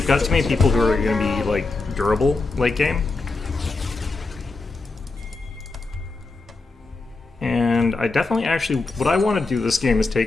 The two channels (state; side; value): quieter; right; 3.6 dB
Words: got too many people who are going to be, like, durable late game. And I definitely actually... What I want to do this game is